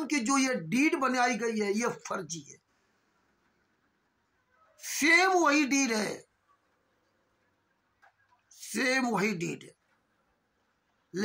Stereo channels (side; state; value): both; identical; correlation 1.00